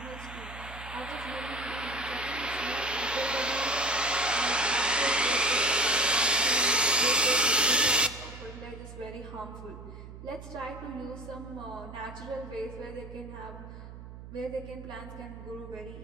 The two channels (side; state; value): right; noise; hum, 13 dB below the sound